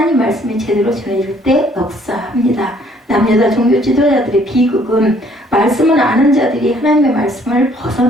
말씀이 제대로 전해질 때 역사합니다. 남여자 종교 지도자들의 비극은 말씀은 아는 자들이 하나님의 말씀을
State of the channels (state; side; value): normal; both; correlation 0.62